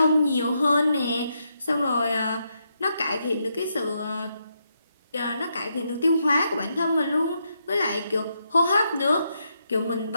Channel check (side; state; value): both; inverted; correlation -0.80